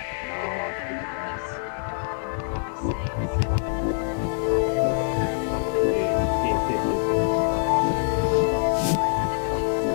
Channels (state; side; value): silent; right; digital silence